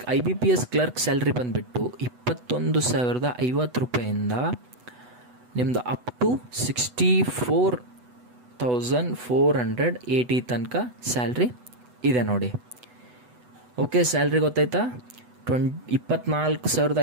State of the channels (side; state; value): left; late; 8.1 ms